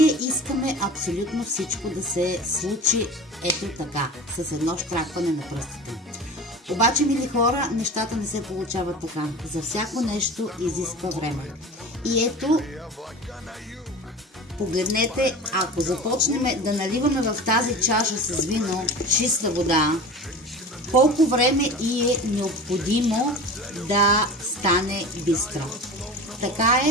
искаме абсолютно всичко да се случи ето така, с едно щракване на пръстите. Обаче, мили хора, нещата не се получават така. За всяко нещо изисква време. И ето, погледнете, ако започнем да наливаме в тази чаша с вино чиста вода, колко време и е необходимо да стане бистро. Така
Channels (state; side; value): normal; both; correlation 0.34